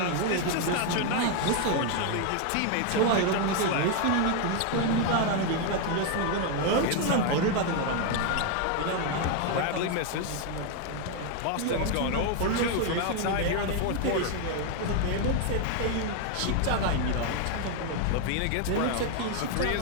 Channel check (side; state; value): both; different; correlation 0.00